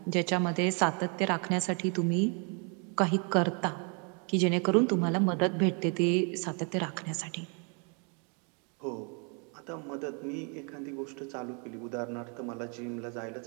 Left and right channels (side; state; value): left; quieter; 36.7 dB